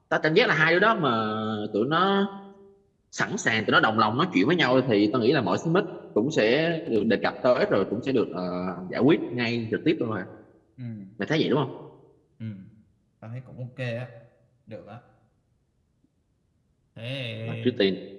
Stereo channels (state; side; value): identical; both; correlation 1.00